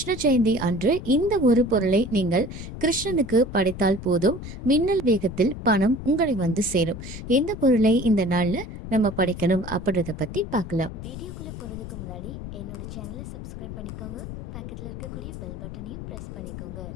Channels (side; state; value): left; noise; rumble, 9 dB below the sound